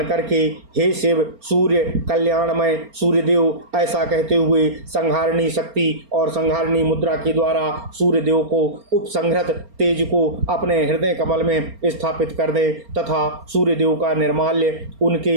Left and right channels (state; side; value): late; left; 4.3 ms